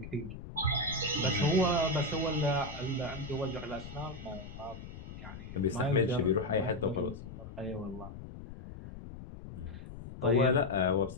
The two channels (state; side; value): noise; left; rumble, 12 dB below the sound